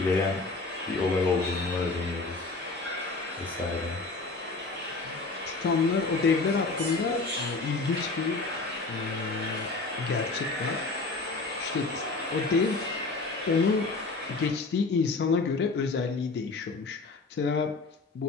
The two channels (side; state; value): right; quieter; 3.7 dB